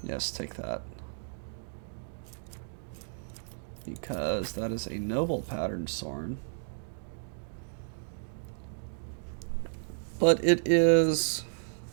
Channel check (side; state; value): left; silent; digital silence